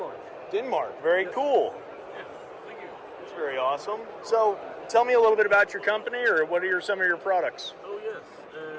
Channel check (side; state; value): both; identical; correlation 1.00